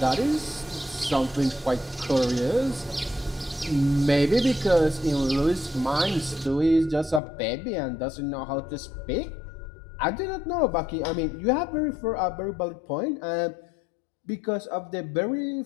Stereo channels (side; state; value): right; drops out; at 7.2 s